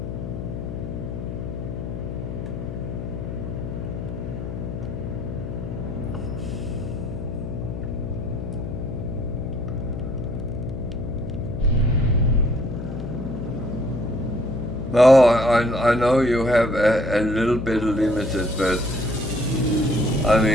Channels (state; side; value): noise; left; hum, 6 dB below the sound